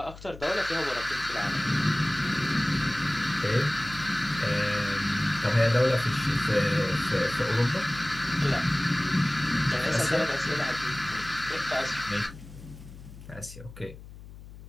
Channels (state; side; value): noise; left; hum, 16 dB below the sound